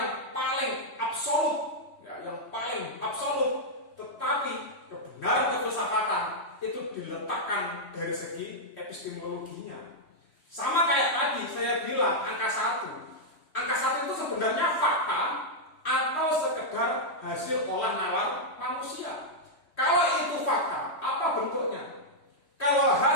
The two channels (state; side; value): late; right; 3.1 ms